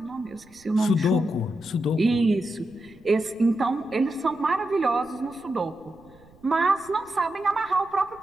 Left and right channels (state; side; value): noise; right; rumble, 27 dB below the sound